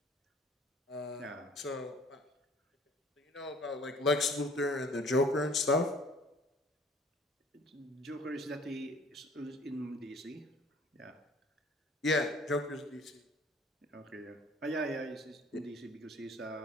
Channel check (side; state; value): both; normal; correlation 0.53